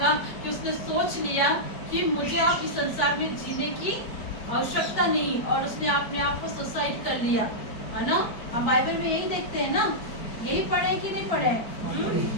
कि उसने सोच लिया कि मुझे आप इस संसार में जीने की आवश्यकता नहीं, और उसने अपने आप को सुसाइड कर लिया, है ना। हम बाइबल में यही देखते हैं ना, यही पढ़े कि नहीं पढ़े।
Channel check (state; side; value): late; right; 4.8 ms